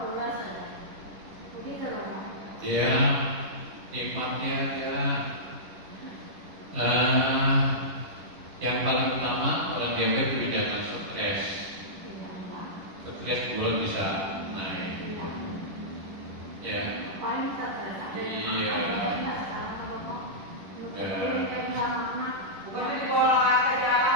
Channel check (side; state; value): left; late; 10 ms